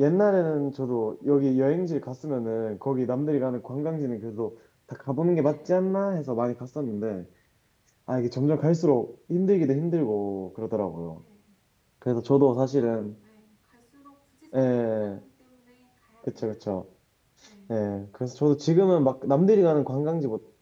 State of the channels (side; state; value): both; identical; correlation 1.00